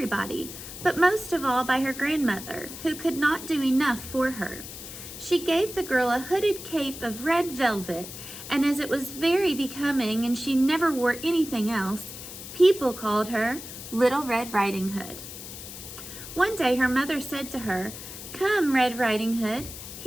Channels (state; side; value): noise; left; hiss, 12 dB below the sound